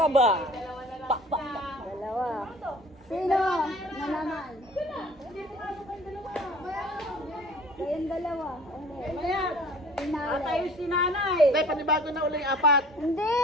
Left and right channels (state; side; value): normal; both; correlation 0.48